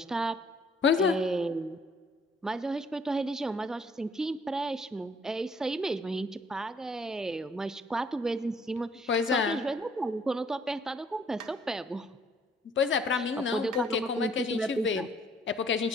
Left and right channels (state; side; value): normal; both; correlation 0.61